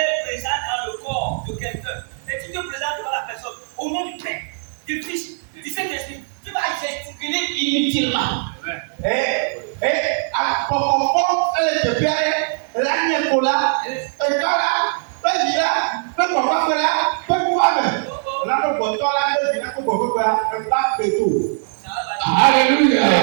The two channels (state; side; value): silent; left; 65 dB below the other